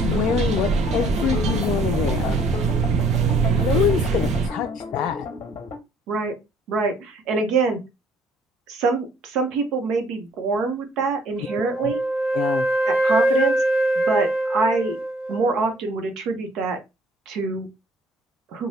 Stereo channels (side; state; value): both; normal; correlation 0.60